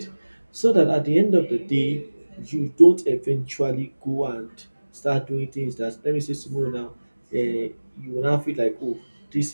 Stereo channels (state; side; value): inverted; both; correlation -1.00